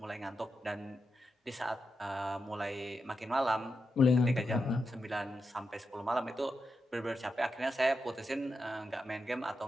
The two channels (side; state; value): both; normal; correlation 0.87